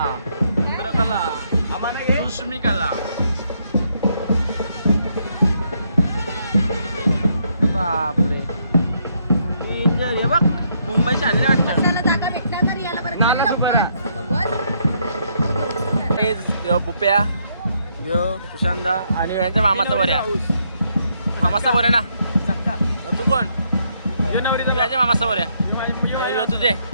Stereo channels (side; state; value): both; inverted; correlation -0.74